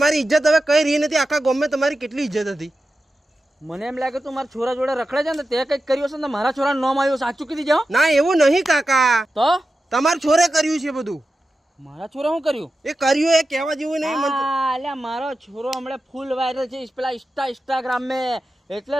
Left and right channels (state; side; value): normal; both; correlation 0.92